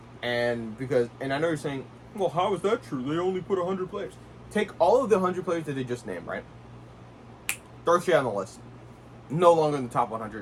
and I know you're saying, well, how is that true? They only put 100 players. Take all of the 100 players that they just named, right? Throw shit on the list. No longer in the top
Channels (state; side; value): identical; both; correlation 1.00